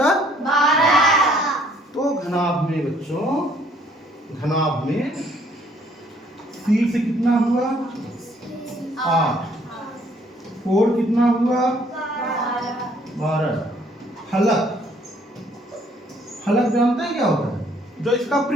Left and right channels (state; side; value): normal; both; correlation 0.63